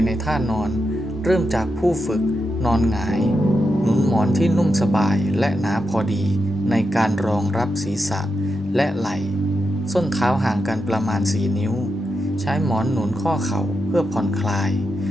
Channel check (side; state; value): both; normal; correlation 0.87